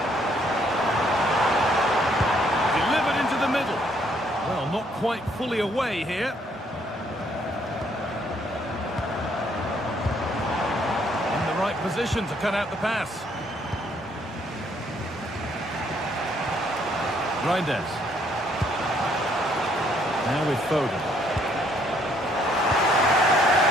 Delivered into the middle. Well, not quite fully away here. In the right position to cut out the pass. Reinders. Now with Foden.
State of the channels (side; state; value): both; normal; correlation 0.68